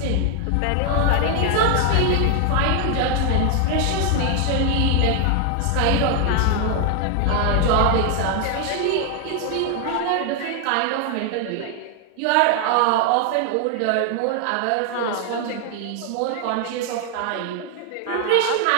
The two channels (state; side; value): different; both; correlation 0.00